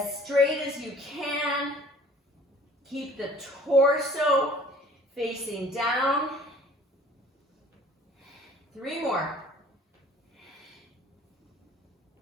straight as you can. Keep the torso facing down. 3 more.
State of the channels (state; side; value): normal; both; correlation 0.52